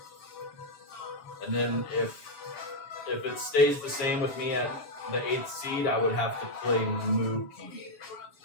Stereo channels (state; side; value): late; right; 7.1 ms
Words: And then if it stays the same with me at the 8th seed, I would have to play Mookie.